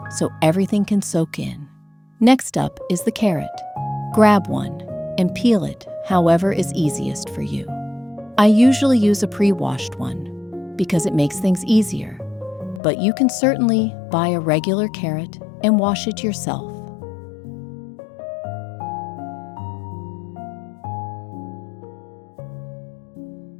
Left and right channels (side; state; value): right; drops out; at 12.8 s